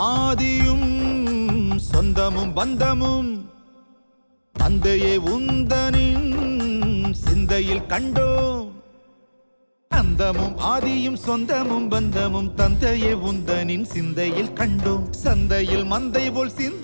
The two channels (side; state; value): both; inverted; correlation -1.00